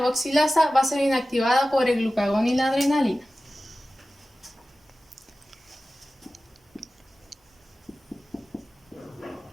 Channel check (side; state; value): both; normal; correlation 0.96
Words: va a ser inactivada por el glucagón y la adrenalina.